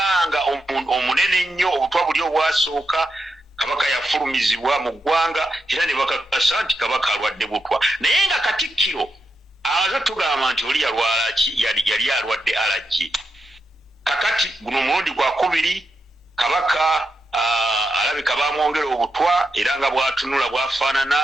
omunene ennyo obutwa buli obwasooka Kabaka yafulumizibwa mu ggwanga era ne bakakasa nti Kabaka alwadde butwa. Naye nga Katikkiro amaze tugamba nti oli yalwala ki yali alwadde allergy. Kakati guno mulundi gwa kubiri Kabaka alabika bamwongera obutwa era nga bwatunula bwafaanana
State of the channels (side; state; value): both; normal; correlation 0.85